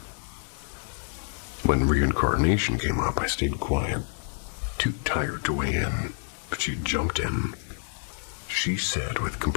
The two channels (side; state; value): right; silent; digital silence